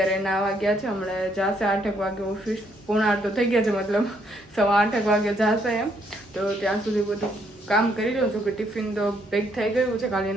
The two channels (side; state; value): both; normal; correlation 0.71